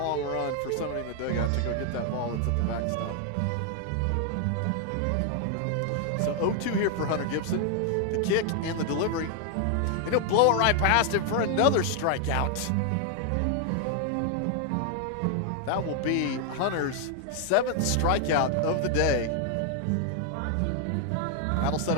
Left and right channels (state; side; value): different; both; correlation 0.00